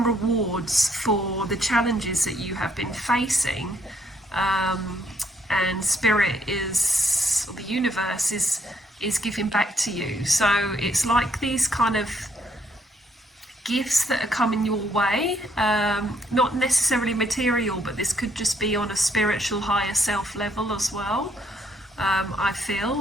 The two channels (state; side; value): normal; both; correlation 0.70